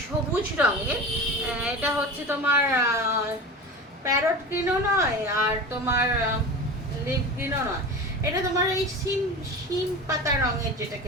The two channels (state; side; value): normal; both; correlation 0.31